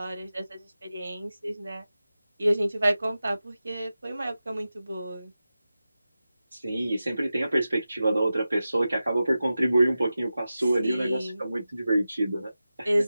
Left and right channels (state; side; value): inverted; both; correlation -0.93